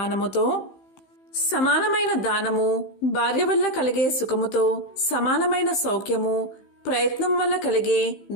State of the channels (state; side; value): late; right; 15 ms